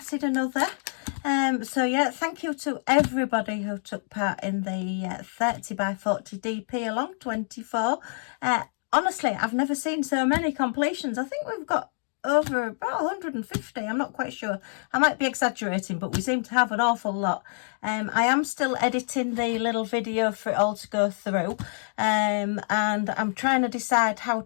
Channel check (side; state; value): right; silent; digital silence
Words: another. So yeah, thank you to everybody who took part in the 30 by 40 DP along 24. Honestly, I've never seen so many completions. I think we've got over about 150. I'm not quite sure. I might be exaggerating, but we seem to have an awful lot. I am still editing the little video for it all to go through. And I'm trying to decide how